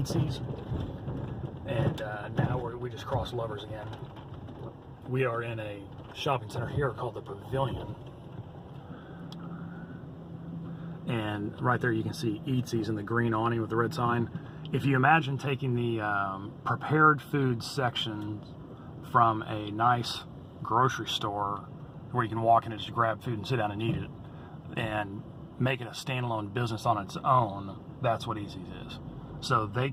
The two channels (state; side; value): identical; both; correlation 1.00